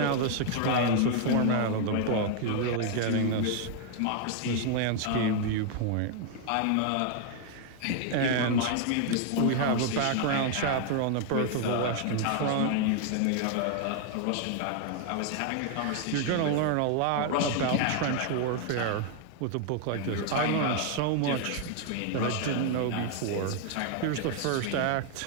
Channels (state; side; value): different; both; correlation 0.00